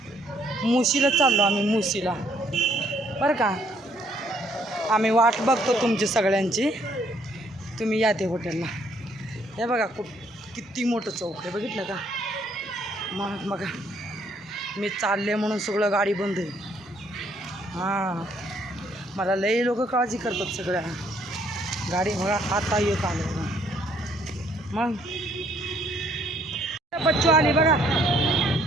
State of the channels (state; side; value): normal; both; correlation 0.66